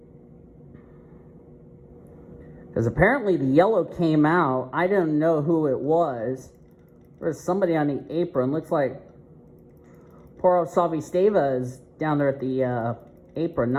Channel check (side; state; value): both; identical; correlation 1.00